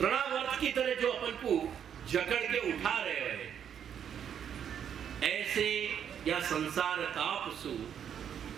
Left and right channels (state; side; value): quieter; left; 8.7 dB